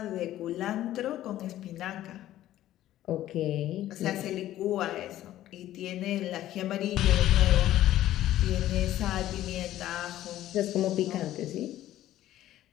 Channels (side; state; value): right; quieter; 13.6 dB